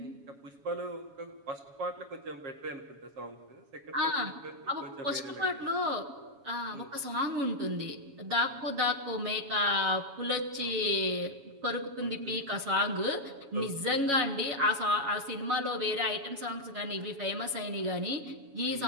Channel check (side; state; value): left; late; 7.2 ms